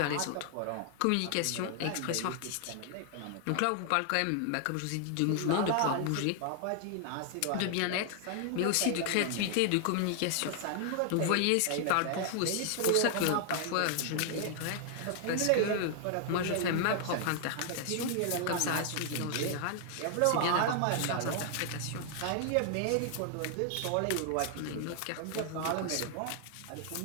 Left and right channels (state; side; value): different; both; correlation 0.00